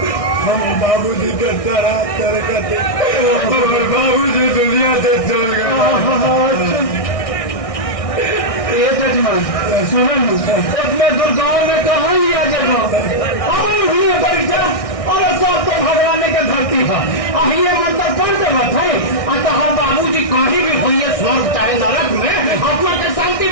हम बाबूजी के तरह करते बाबूजी दुनिया से चल गए। ये जजमान सुनो उसमें दुर्गाओं में कहाँ लिया जगह परीक्षा और सब तो भगवान के धरती है ये मतलब कौन से मत है अतः बाबूजी कहीं भी हुई स्वर्ग चाहे नरक में आत्मा के शांति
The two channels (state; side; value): late; right; 1.6 ms